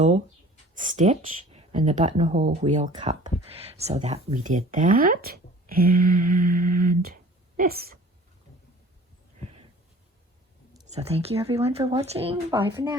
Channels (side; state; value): both; normal; correlation 0.47